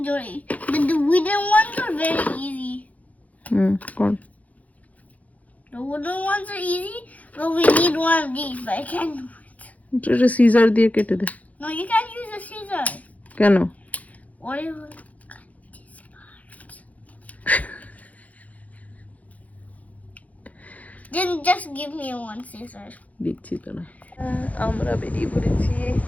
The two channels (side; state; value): right; late; 0.072 ms